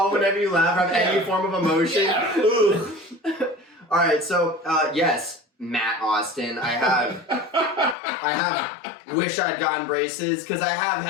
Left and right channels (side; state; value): right; drops out; at 8.0 s